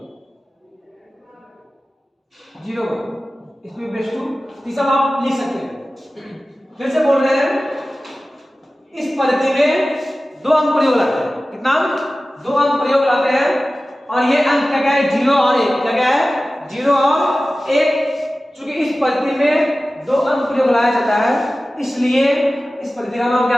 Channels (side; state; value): both; normal; correlation 0.96